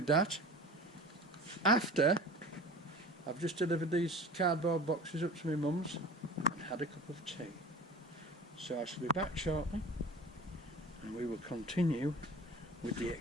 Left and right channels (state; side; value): normal; both; correlation 0.39